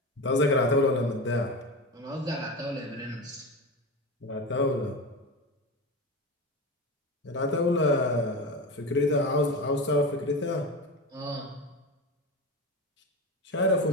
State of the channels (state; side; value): normal; both; correlation 0.24